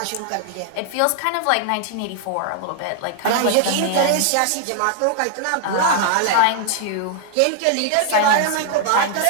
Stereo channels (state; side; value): different; both; correlation 0.00